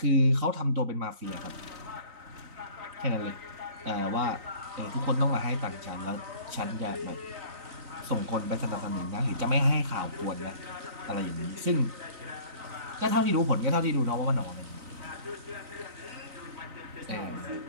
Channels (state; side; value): late; left; 3.9 ms